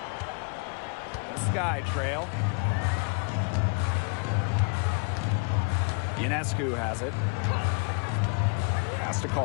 The Sky trail. Ionescu has it. Pass to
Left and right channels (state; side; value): quieter; right; 35.7 dB